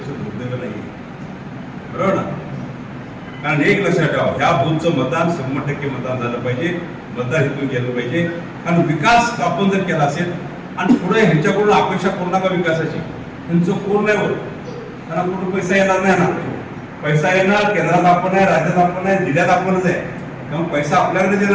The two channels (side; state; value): both; identical; correlation 1.00